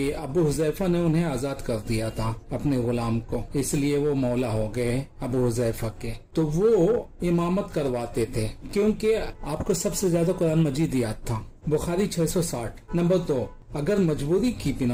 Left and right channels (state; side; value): identical; both; correlation 1.00